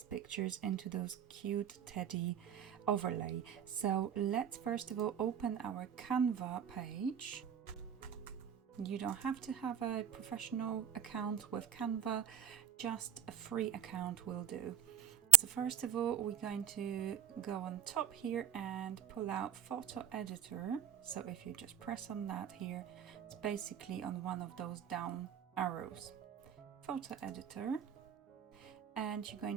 pictures into those cute teddy overlay. So let's first of all open our Canva page. You don't have to have a professional account with Canva, just a free account will do. So first of all, we're going to go on top here and pull out Photo Editor. So if you just press on that here, it's basically on one of those down arrows. Photo Editor. And you're going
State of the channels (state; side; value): quieter; left; 10.2 dB